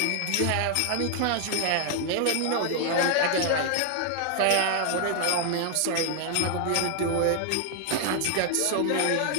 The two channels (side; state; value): both; different; correlation 0.00